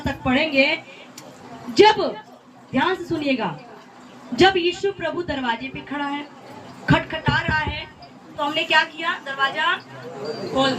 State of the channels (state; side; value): identical; both; correlation 1.00